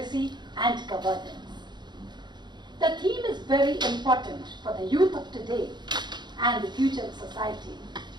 and Governance. The theme is very important for the youth of today and the future of society.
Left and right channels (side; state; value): left; late; 0.21 ms